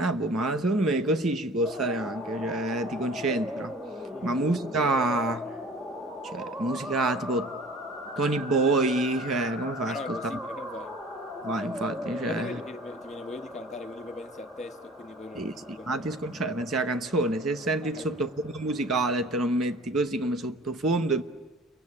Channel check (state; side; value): normal; both; correlation 0.46